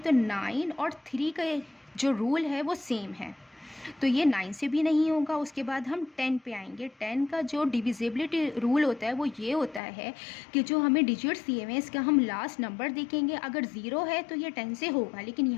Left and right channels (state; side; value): drops out; right; at 9.8 s